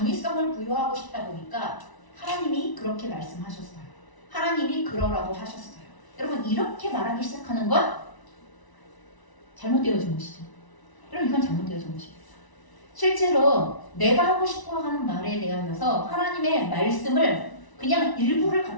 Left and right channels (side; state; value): right; late; 1.0 ms